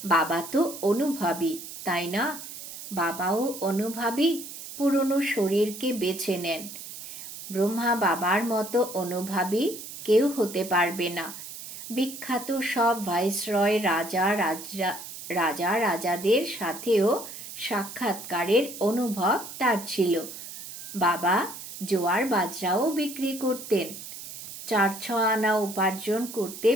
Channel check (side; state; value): right; noise; hiss, 12 dB below the sound